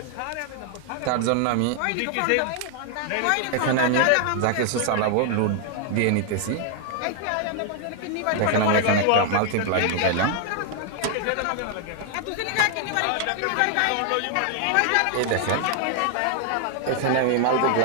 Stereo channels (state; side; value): different; both; correlation 0.00